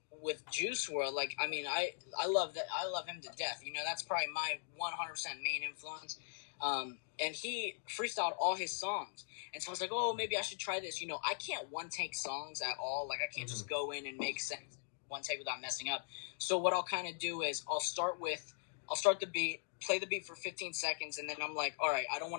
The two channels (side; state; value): right; silent; digital silence